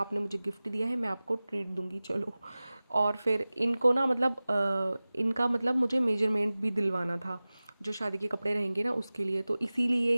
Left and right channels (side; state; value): both; inverted; correlation -0.98